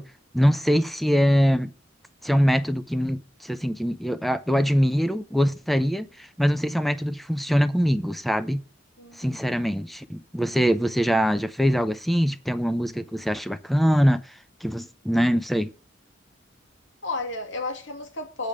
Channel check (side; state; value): both; normal; correlation 0.95